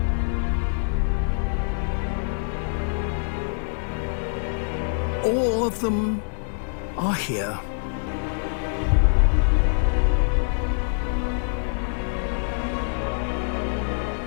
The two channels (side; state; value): right; silent; digital silence